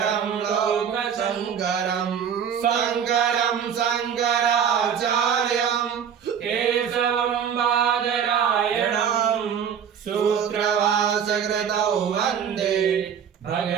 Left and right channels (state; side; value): quieter; left; 8.0 dB